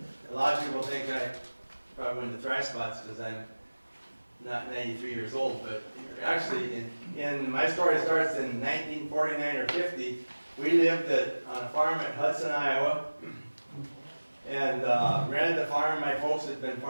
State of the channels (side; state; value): both; inverted; correlation -1.00